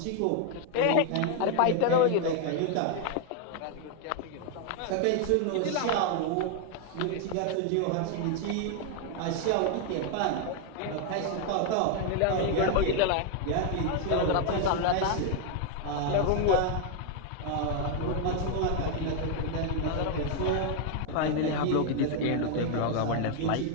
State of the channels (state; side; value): different; both; correlation 0.01